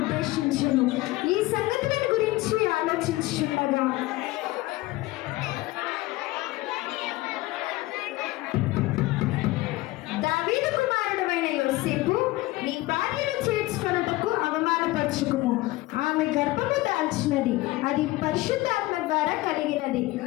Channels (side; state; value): right; quieter; 19.3 dB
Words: ఈ సంగతులను గురించి ఆలోచించుండగా దావీదు కుమారుడైన యోసేపు, నీ భార్యను చేర్చుకొనుటకు అవమానపరచుకుము. ఆమె గర్భము దాల్చినది, అది పరిశుద్ధాత్మ ద్వారా కలిగినది.